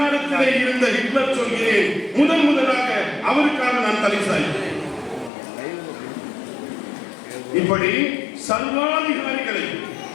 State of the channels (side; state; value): right; drops out; at 5.3 s